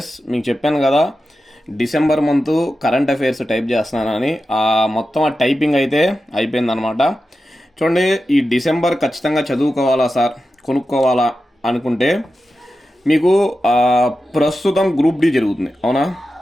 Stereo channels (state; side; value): normal; both; correlation 0.92